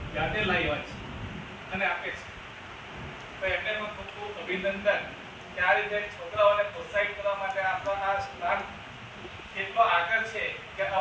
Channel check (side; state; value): both; identical; correlation 1.00